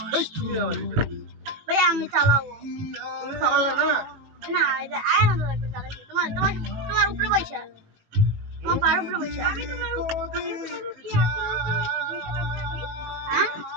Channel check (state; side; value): late; left; 18 ms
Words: ভাইয়া আমি চালাবো তুমি চালালে না না এটা আয় না লাগবে চালাচ্ছি তোমার তোমার তোমার উপরে বসে তোমার পার উপরে বসে আমি তোমার উপরে কি হ্যাঁ